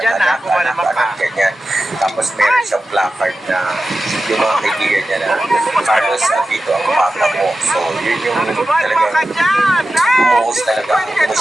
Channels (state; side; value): normal; both; correlation 0.93